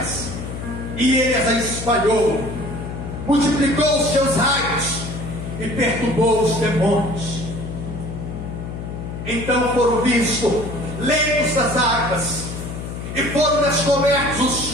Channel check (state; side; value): noise; left; hum, 8 dB below the sound